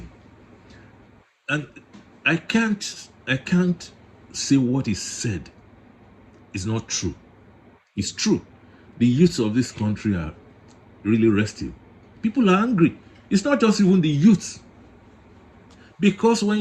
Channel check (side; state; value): both; identical; correlation 1.00